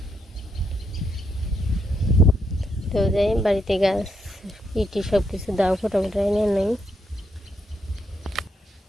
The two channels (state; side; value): normal; both; correlation 0.79